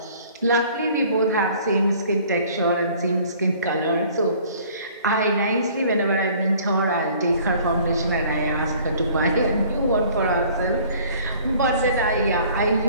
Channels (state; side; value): inverted; both; correlation -0.53